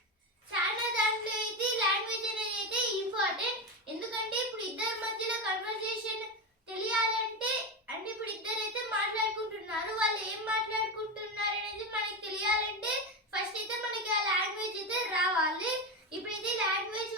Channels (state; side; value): normal; both; correlation 0.15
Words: చాలా దాంట్లో అయితే లాంగ్వేజ్ అనేది అయితే ఇంపార్టెంట్. ఎందుకంటే ఇప్పుడు ఇద్దరి మధ్యలో కన్వర్జేషన్ తెలియాలంటే అంటే ఇప్పుడు ఇద్దరు అయితే మాట్లాడుకుంటున్నారు, వాళ్ళు ఏం మాట్లాడుకుంటున్నారు అనేది మనకి తెలియాలంటే ఫస్ట్ అయితే మనకి ఆ లాంగ్వేజ్ అయితే రావాలి. ఇప్పుడైతే లాంగ్వేజ్